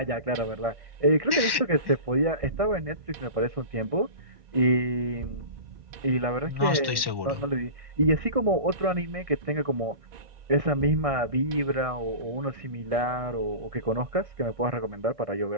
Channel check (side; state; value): left; late; 1.1 ms